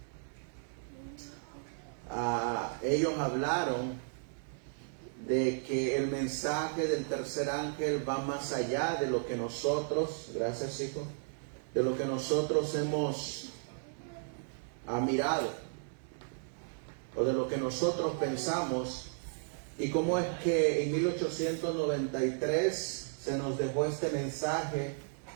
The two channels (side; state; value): left; silent; 55 dB below the other